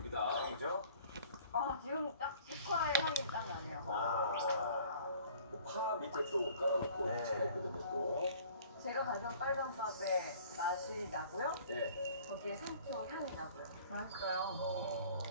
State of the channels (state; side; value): inverted; both; correlation -0.51